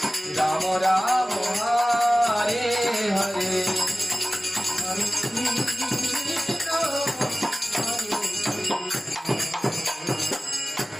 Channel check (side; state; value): both; normal; correlation 0.96